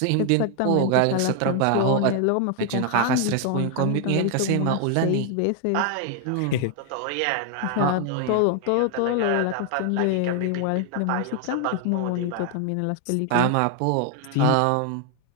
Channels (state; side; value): different; both; correlation 0.01